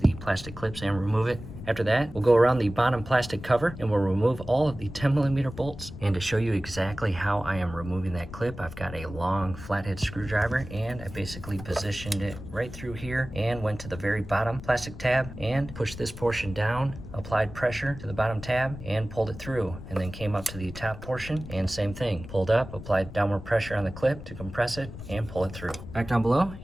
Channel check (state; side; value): noise; left; rumble, 13 dB below the sound